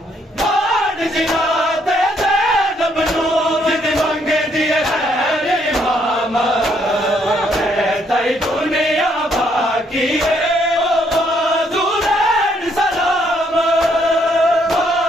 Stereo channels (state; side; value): normal; both; correlation 0.70